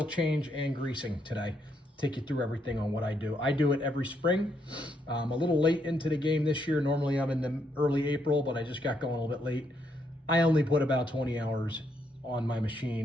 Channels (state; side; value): normal; both; correlation 0.76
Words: change and greasing today. Take you through everything on what I do. I do it every spring. I'm a little late into the game this year. Normally I'm in the early April, but I just got going a little bit late. I only put about 20 hours on my